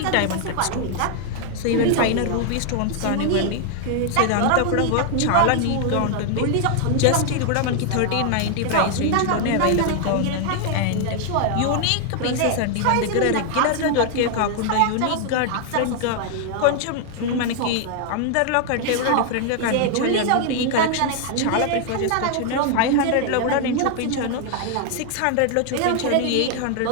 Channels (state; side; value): different; both; correlation 0.00